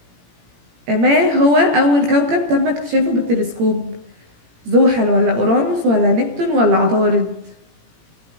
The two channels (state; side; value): late; left; 17 ms